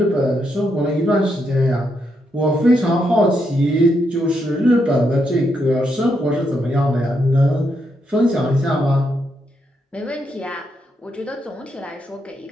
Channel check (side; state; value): both; normal; correlation 0.80